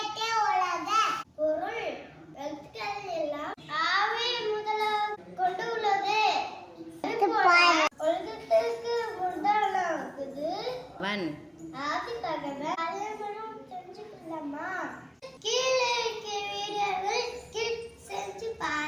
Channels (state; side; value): identical; both; correlation 1.00